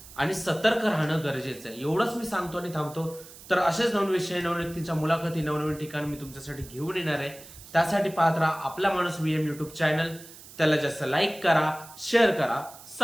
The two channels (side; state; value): right; noise; hiss, 18 dB below the sound